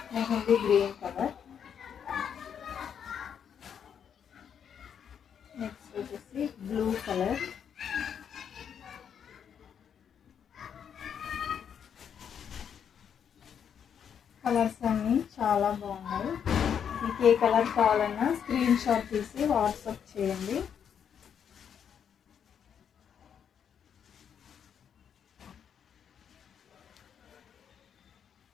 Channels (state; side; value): quieter; right; 8.0 dB